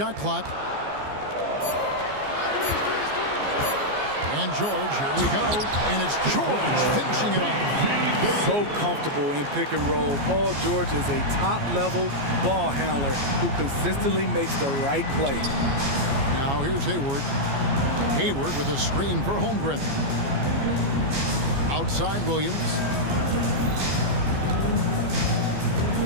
clock. And George, here we go. And it's George finishing it off. So comfortable in pick and roll. Paul George is a top-level ball handler who consistently makes the right play. Now here's Hayward. Hayward with a screen for Holmgren. Outside Williams.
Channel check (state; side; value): late; left; 14 ms